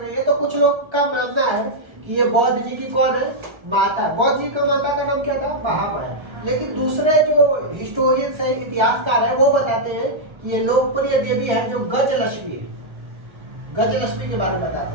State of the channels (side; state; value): left; late; 1.3 ms